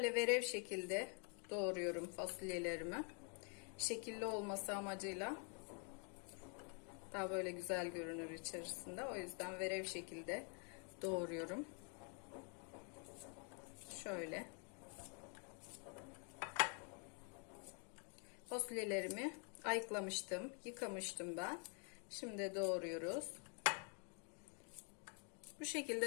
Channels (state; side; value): quieter; right; 39.2 dB